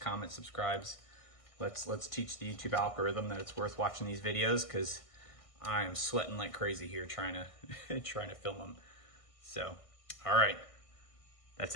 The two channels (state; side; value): late; right; 1.6 ms